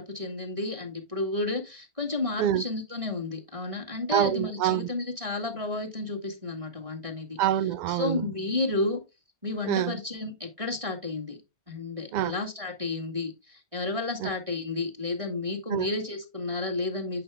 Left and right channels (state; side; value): late; left; 1.6 ms